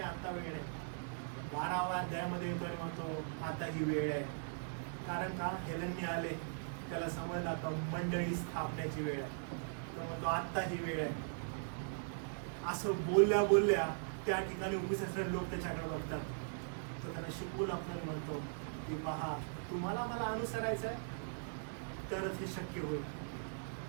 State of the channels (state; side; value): silent; left; digital silence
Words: आता वेळ नाही. 12व्या अध्यायामध्ये येतो आणि म्हणतो आता ही वेळ आहे. कारण का? हेलेनने आले, त्याला समजलं आता मंडळी स्थापण्याची वेळ आहे. तो म्हणतो आता ही वेळ आहे. असं बोलल्या त्या ठिकाणी उपस्थित लोक त्याच्याकडे बघतात. तो त्यांना शिकवून आपल्याला म्हणतो की पहा, तुम्हाला मला अनुसरायचं आहे तरच हे शक्य होईल.